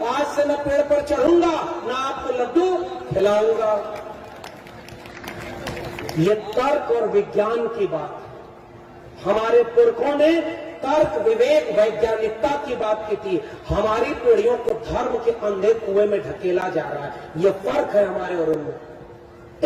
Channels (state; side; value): identical; both; correlation 1.00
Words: आज से मैं पेड़ पर चढ़ूंगा, ना आपको लड्डू खिलाऊंगा। ये तर्क और विज्ञान की बात। हमारे पुरखों ने तर्क, विवेक, वैज्ञानिकता की बात की थी। हमारी पीढ़ियों को धर्म के अंधे कुएं में ढकेला जा रहा है। ये फर्क है हमारे और उनमें।